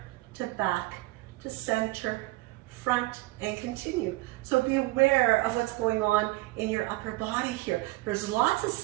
to back to center, front, and continue. So be aware of what's going on in your upper body here. There's lots of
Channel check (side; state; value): left; quieter; 20.5 dB